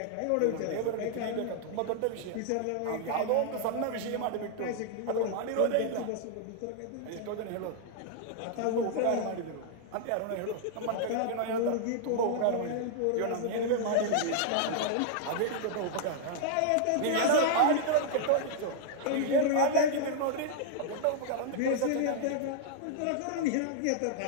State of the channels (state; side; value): different; both; correlation -0.01